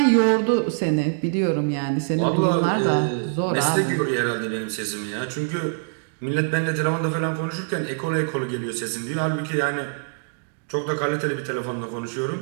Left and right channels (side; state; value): left; silent; digital silence